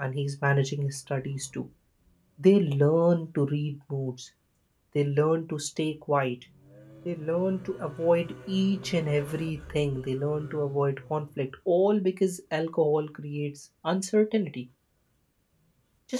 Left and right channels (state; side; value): identical; both; correlation 1.00